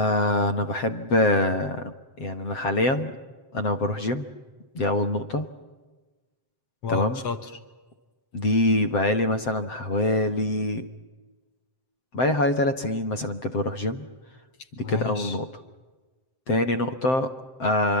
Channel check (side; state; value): right; late; 7.7 ms